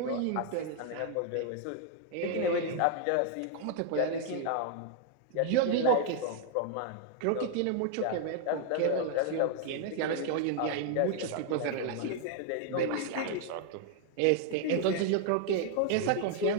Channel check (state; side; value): different; both; correlation 0.00